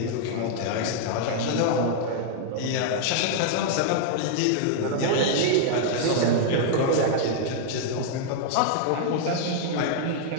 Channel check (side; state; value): both; different; correlation 0.00